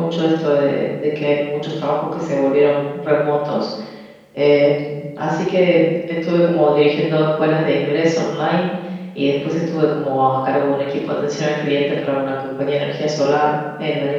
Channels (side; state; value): both; identical; correlation 1.00